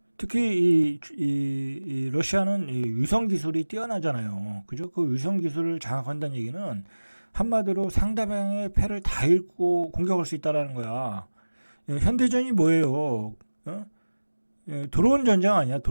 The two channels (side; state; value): both; inverted; correlation -1.00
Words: 특히 이 러시아는 이 위성 기술이 뛰어나잖아요. 그죠? 그 위성 기술을 장악한다는 얘기는 한마디로 상대방의 패를 다 읽고 공격할 수 있다라는 거야. 현대전이 뭐예요? 드론 전쟁 아니야,